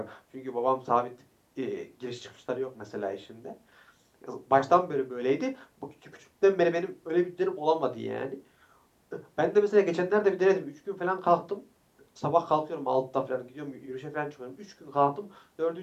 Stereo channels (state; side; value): identical; both; correlation 1.00